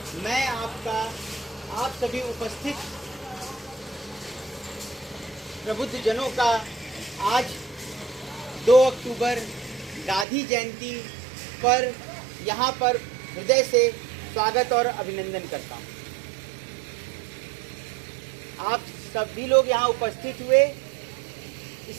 मैं आप सभी उपस्थित प्रबुद्ध जनों का आज 2 अक्टूबर गांधी जयंती पर यहाँ पर हृदय से स्वागत और अभिनंदन करता हूँ। आप सभी लोग यहाँ उपस्थित हुए,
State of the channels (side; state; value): left; drops out; at 10.2 s